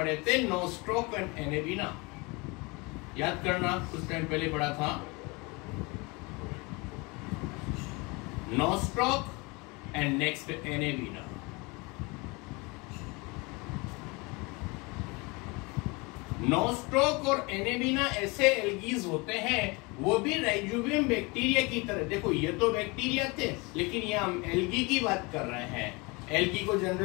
थे, नोस्ट्रोक एंड एनेबिना। याद करना, कुछ टाइम पहले पढ़ा था, नोस्ट्रोक एंड नेक्स्ट एनेबिना। नोस्ट्रोक और एनेबिना ऐसे एल्गीज होते हैं, वो भी राइजोबियम बैक्टीरिया की तरह। देखो ये तो बैक्टीरिया थे, लेकिन ये हम एल्गी की बात कर रहे हैं। एल्गी को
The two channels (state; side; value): quieter; right; 26.9 dB